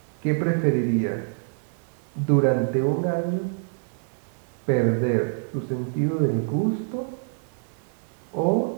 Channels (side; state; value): left; silent; digital silence